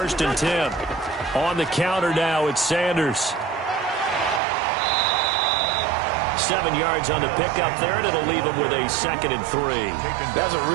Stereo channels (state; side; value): drops out; left; at 4.4 s